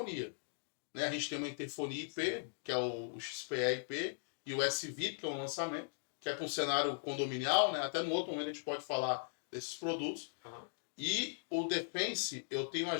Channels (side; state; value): right; silent; digital silence